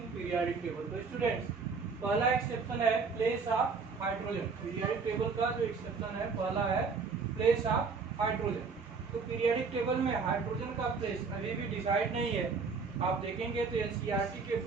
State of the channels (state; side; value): quieter; left; 5.0 dB